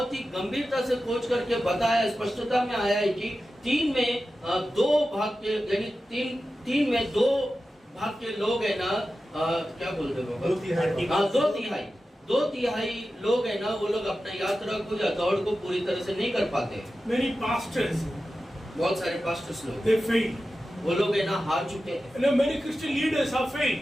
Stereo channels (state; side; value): normal; both; correlation 0.93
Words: ही गंभीरता से खोज करके बताया, स्पष्टता में आया है कि 3 में 2 भाग के यानी 3 में 2 भाग के लोग है ना क्या बोलते हो? 2/3। हाँ 2/3 लोग है ना वो लोग अपना यात्रा को या दौड़ को पूरी तरह से नहीं कर पाते। Many pastors, बहुत सारे पास्टर्स लोग they fail. वो लोग है ना हार चुके हैं। Many Christian leaders have